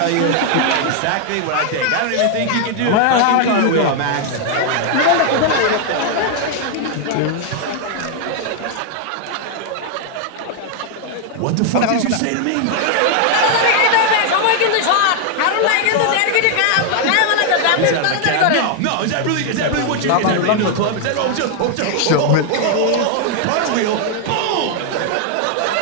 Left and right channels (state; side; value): different; both; correlation 0.00